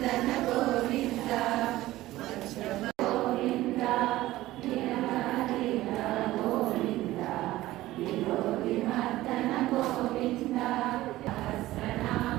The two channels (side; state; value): left; quieter; 16.5 dB